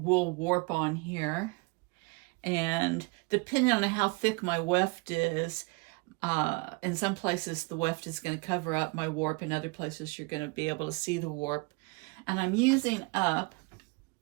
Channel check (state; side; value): quieter; left; 28.1 dB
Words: warp on here. And depending on how thick my weft is, in some places the weft is going to cover up my warp, in other places you're going to be able to see the warp. And I'm using up